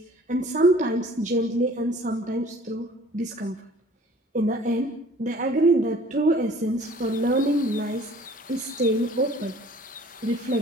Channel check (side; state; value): both; normal; correlation 0.51